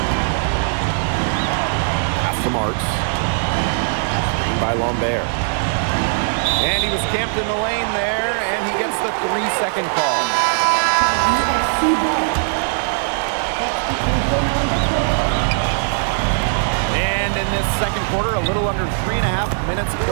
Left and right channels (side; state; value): left; silent; digital silence